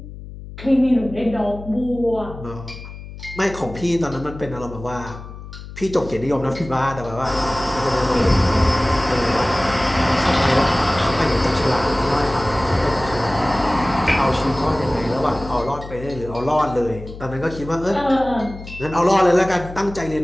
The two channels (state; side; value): noise; left; hum, 13 dB below the sound